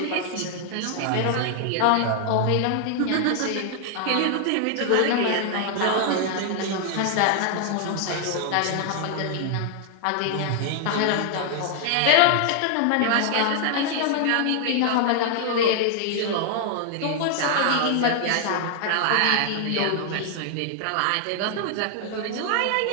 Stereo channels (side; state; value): both; different; correlation 0.00